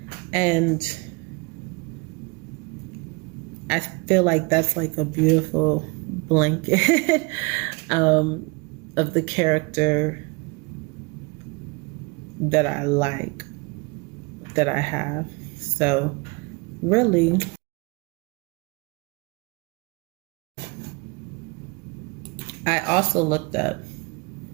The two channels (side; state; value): left; quieter; 27.9 dB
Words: And I feel like that's like a beautiful blanket of the character that I like, that I have. So really, I also looked up,